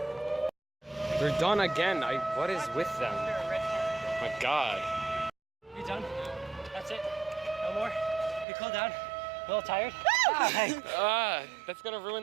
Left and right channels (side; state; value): left; drops out; at 8.5 s